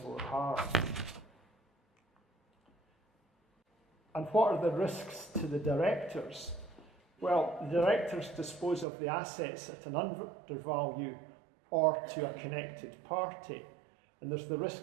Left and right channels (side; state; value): left; drops out; at 8.8 s